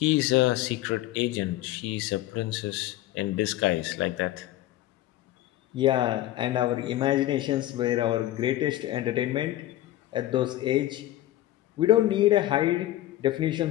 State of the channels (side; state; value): right; quieter; 14.8 dB